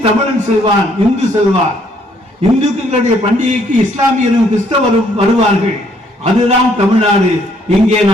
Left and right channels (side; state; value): both; normal; correlation 0.67